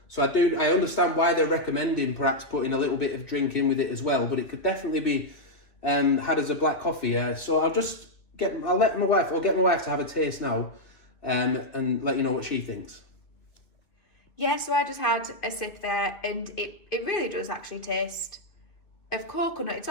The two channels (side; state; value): right; late; 2.8 ms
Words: So I understand why they're recommending perhaps putting a little bit of drink in with it as well, but it could definitely be had as a black coffee. So I'll get my wife to have a taste now, and let you know what she thinks. Yeah, so I just had a sip there, and it really does actually taste of coconut. It's